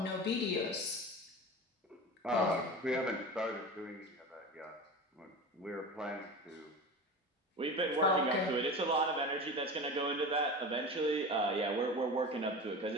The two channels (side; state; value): both; normal; correlation 0.30